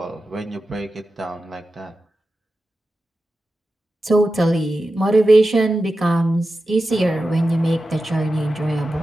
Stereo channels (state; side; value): normal; both; correlation 0.92